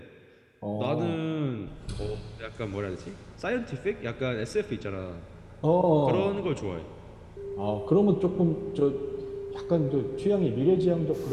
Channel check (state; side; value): identical; both; correlation 1.00